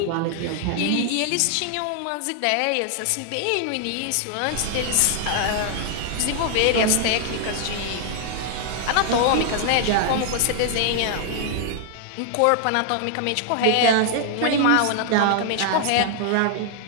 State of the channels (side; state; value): both; different; correlation 0.00